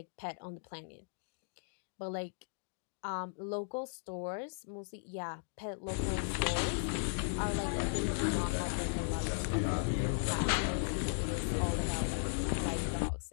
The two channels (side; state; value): right; silent; digital silence